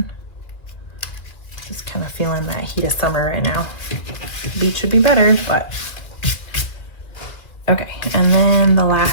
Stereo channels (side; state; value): right; late; 2.3 ms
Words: Just kind of feeling that heat of summer right now. The beach would be better, but okay. And then the